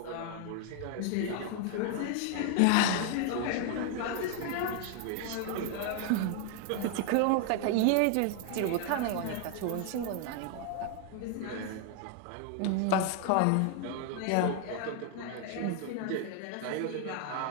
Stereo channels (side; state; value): both; different; correlation 0.00